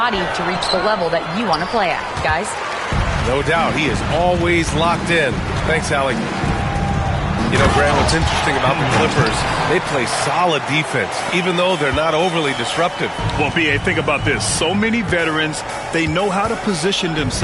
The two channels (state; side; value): identical; both; correlation 1.00